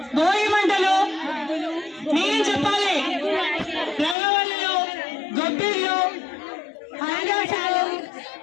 భోగి మంటలు, నేను చెప్పాలి, రంగవల్లులు, గొబ్బిళ్ళు, ఆకాశాలు,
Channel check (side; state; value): right; drops out; at 4.2 s